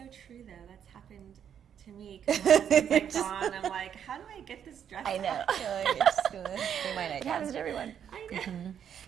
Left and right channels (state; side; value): quieter; left; 8.7 dB